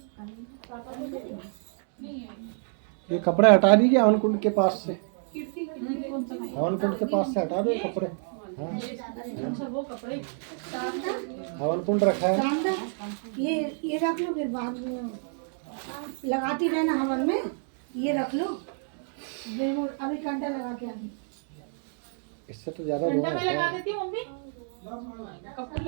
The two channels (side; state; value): left; silent; 59 dB below the other